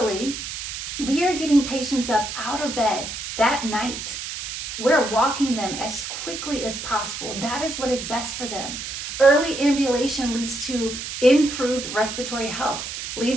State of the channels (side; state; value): right; noise; hiss, 7 dB below the sound